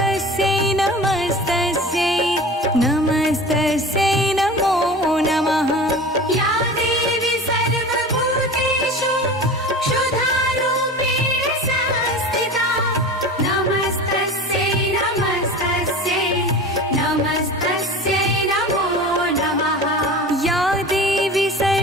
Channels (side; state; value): both; normal; correlation 0.35